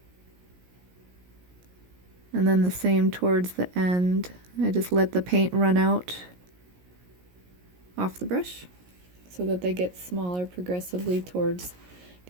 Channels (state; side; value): late; left; 17 ms